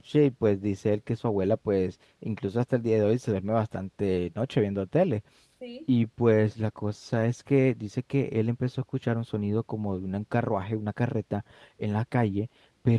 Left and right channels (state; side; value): identical; both; correlation 1.00